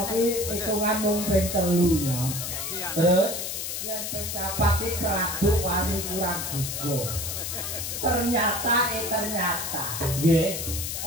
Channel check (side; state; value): left; noise; hiss, 4 dB below the sound